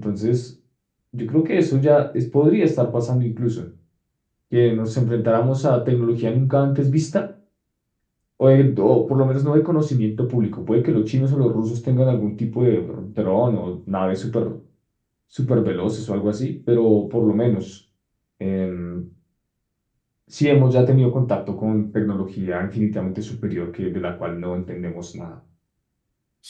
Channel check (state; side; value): identical; both; correlation 1.00